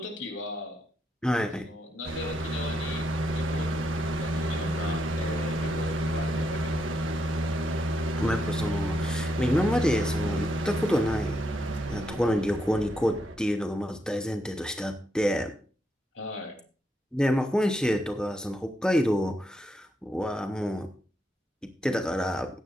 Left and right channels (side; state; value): both; normal; correlation 0.80